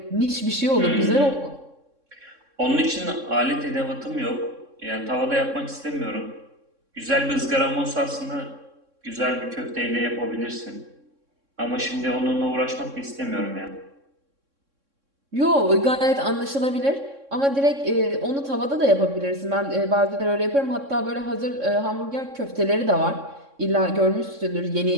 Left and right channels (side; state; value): left; late; 3.6 ms